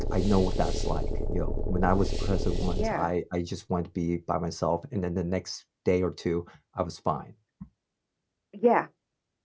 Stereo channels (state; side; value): identical; both; correlation 1.00